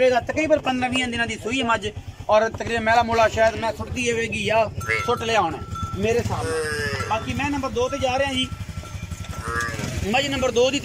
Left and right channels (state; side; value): identical; both; correlation 1.00